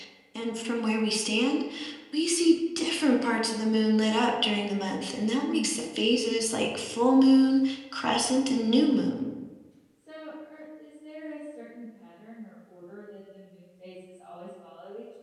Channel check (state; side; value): identical; both; correlation 1.00